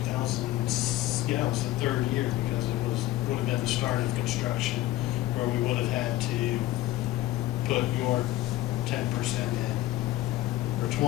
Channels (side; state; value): right; quieter; 15.7 dB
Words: yeah, it was the third year, because would have been the start of construction, where we would have had to put your 10% in, or